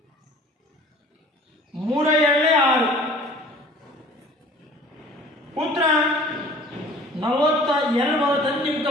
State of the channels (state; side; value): normal; both; correlation 0.48